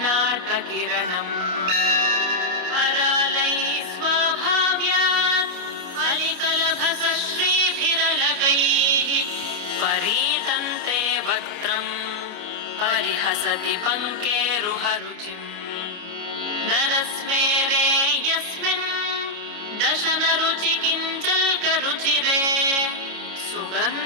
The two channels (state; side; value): late; left; 29 ms